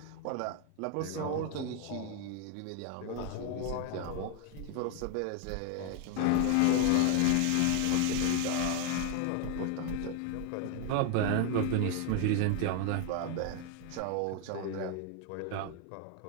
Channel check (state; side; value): different; both; correlation 0.01